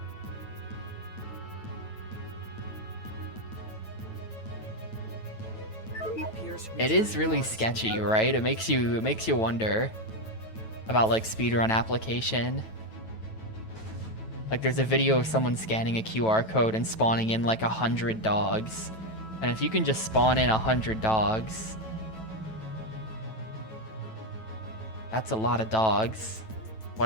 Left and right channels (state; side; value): late; right; 9.1 ms